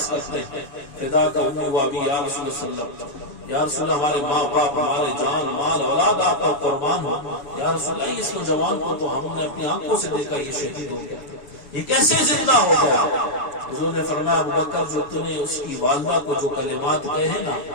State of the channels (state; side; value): late; right; 7.1 ms